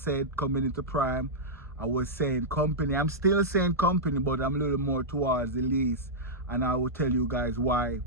coming into Prime, I was saying company. I'm still saying company, but I'm a little more towards the lease. And I will tell you guys why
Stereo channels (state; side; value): normal; both; correlation -0.10